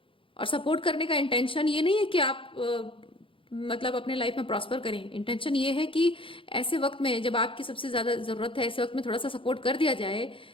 और सपोर्ट करने का इंटेंशन ये नहीं है कि आप मतलब अपने लाइफ में प्रॉस्पर करें। इंटेंशन ये है कि ऐसे वक्त में जब आपकी सबसे ज्यादा जरूरत है, ऐसे वक्त में थोड़ा सा सपोर्ट कर दिया जाए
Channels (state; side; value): late; right; 0.25 ms